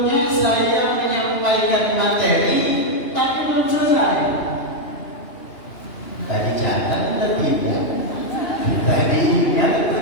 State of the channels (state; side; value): late; right; 2.8 ms